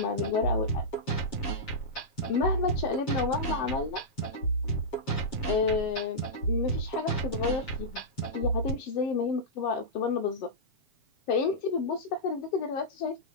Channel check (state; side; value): late; right; 7.3 ms